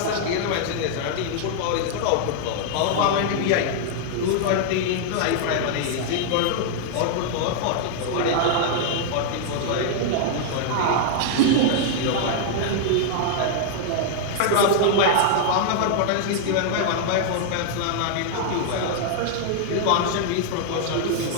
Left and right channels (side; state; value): both; different; correlation -0.01